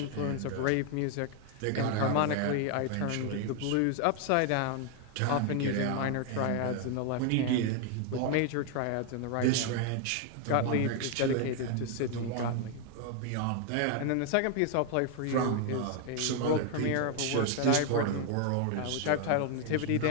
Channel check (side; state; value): both; different; correlation 0.00